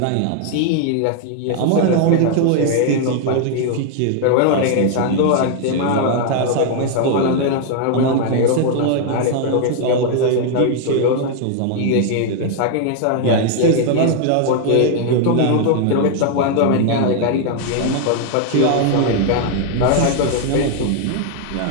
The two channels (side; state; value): both; different; correlation 0.00